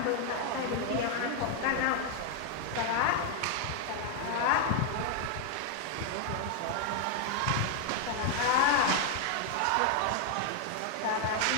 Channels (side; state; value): both; different; correlation 0.00